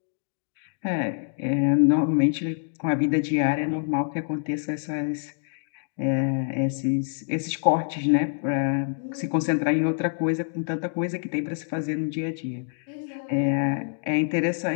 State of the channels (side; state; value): right; silent; digital silence